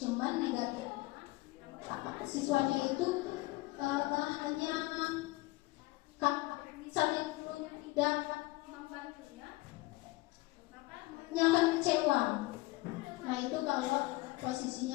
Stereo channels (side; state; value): right; quieter; 20.8 dB